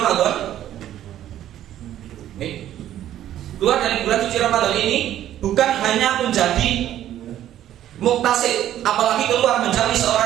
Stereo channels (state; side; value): quieter; left; 12.1 dB